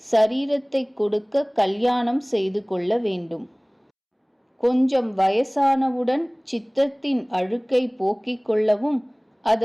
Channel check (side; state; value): both; identical; correlation 1.00